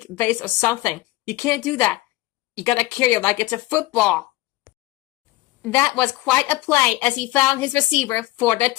vase or something. You can't do that. You gotta carry it like it's a football. That was quite a play as he found his receiver for the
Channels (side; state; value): right; quieter; 18.4 dB